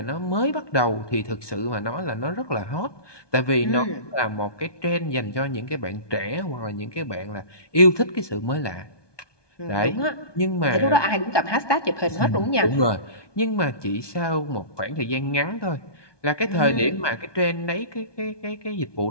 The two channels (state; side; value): late; right; 1.2 ms